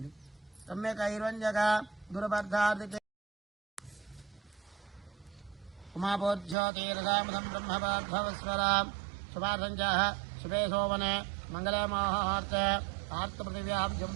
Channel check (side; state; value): left; drops out; at 6.6 s